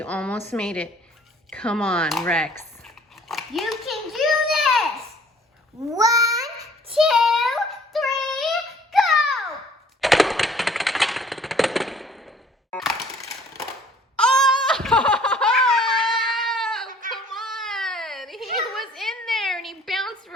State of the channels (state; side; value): normal; both; correlation 0.55